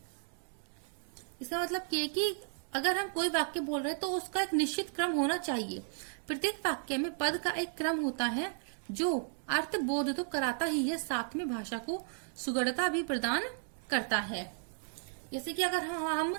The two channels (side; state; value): left; silent; 55 dB below the other